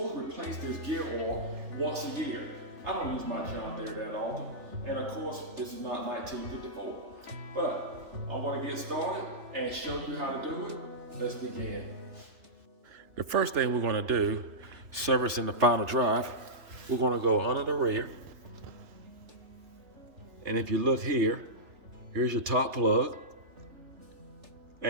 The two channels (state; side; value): late; left; 3.4 ms